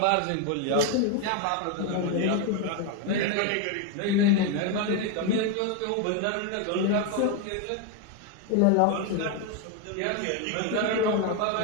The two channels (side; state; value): both; different; correlation 0.01